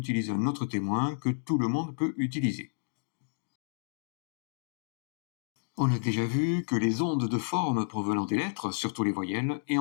un autre témoin que tout le monde peut utiliser. On a déjà vu que les ondes de forme provenant des lettres, surtout les voyelles, et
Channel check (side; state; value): right; silent; 57 dB below the other